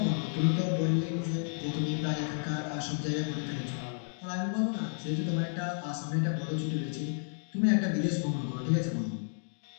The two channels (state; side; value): silent; right; digital silence